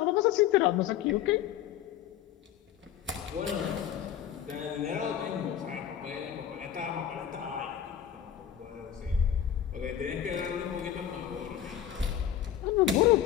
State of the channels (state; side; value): quieter; right; 10.2 dB